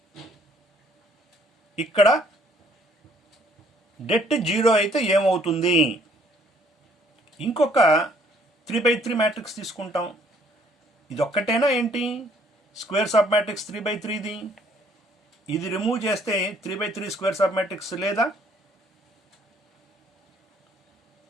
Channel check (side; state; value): both; normal; correlation 0.62